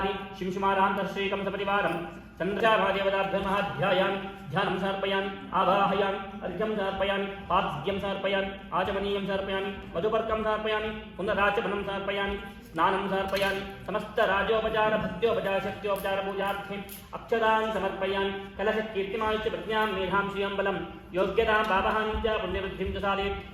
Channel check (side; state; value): both; identical; correlation 1.00